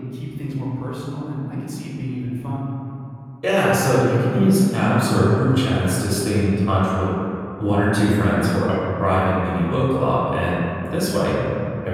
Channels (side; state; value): both; identical; correlation 1.00